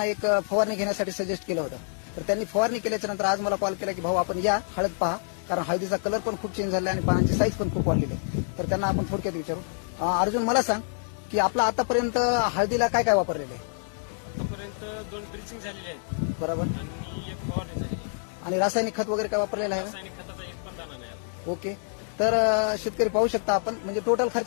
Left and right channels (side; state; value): right; silent; 60 dB below the other